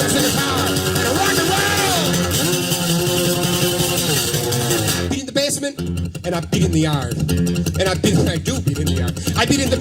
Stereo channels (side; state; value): both; identical; correlation 1.00